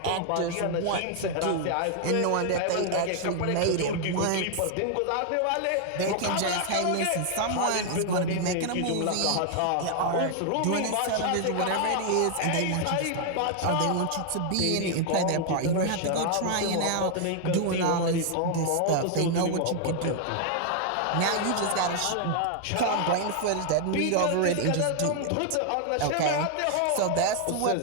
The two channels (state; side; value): different; both; correlation 0.00